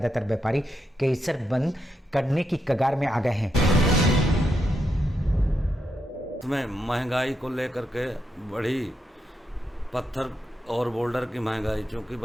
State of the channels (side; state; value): both; normal; correlation 0.83